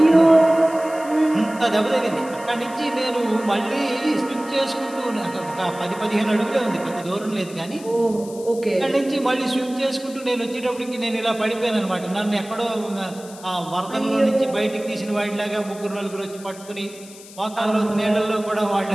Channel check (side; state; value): left; noise; hiss, 19 dB below the sound